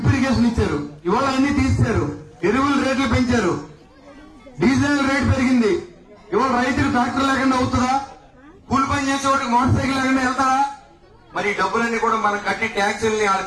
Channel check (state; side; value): identical; both; correlation 1.00